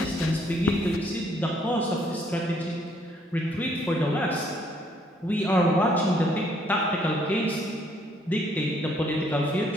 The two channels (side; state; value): both; normal; correlation 0.66